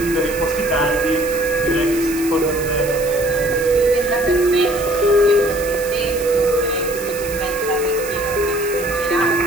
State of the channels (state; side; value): noise; right; hiss, 12 dB below the sound